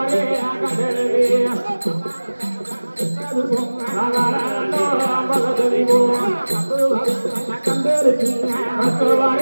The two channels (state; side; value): inverted; both; correlation -1.00